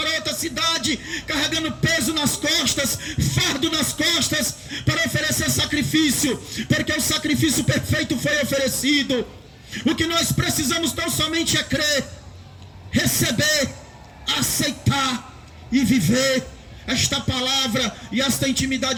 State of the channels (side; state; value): both; identical; correlation 1.00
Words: outra cidade carregando peso nas costas, fardo nas costas, para oferecer sacrifício, porque o sacrifício perfeito foi oferecido. O que nós precisamos tão somente é crer, receber, aceitar e viver esta palavra e esta